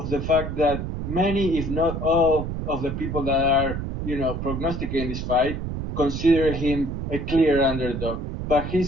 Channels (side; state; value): right; noise; rumble, 4 dB below the sound